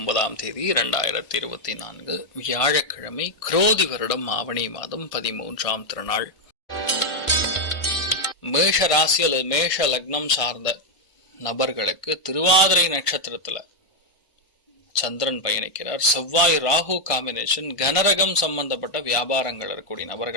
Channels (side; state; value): right; late; 1.5 ms